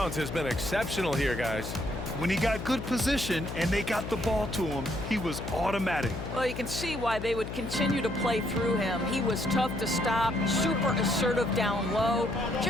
has been exceptional here, guys. When he got good position and they got the ball to him, he was automatic. Well, you can see why they would continue to play through him. He was tough to stop, super assertive down low,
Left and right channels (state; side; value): noise; left; hum, 7 dB below the sound